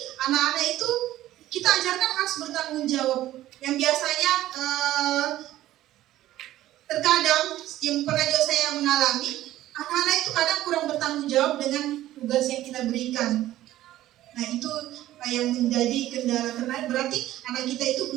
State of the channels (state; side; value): quieter; left; 14.4 dB